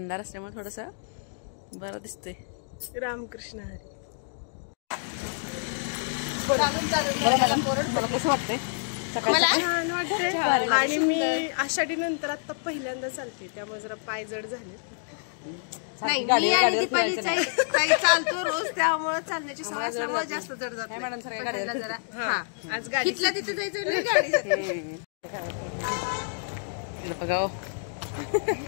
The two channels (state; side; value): silent; right; digital silence